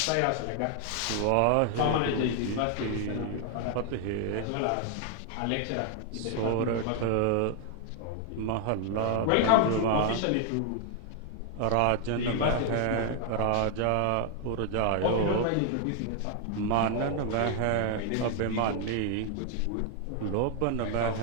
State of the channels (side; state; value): both; different; correlation 0.00